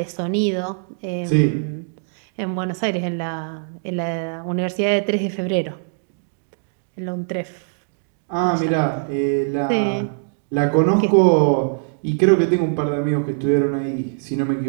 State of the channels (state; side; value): silent; left; digital silence